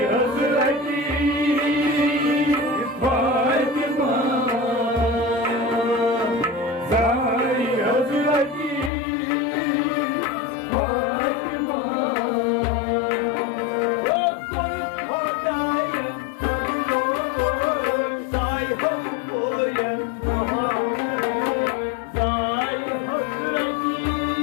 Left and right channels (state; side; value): drops out; right; at 8.9 s